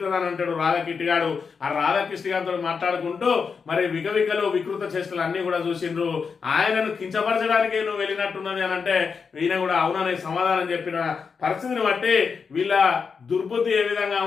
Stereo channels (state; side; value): quieter; right; 5.6 dB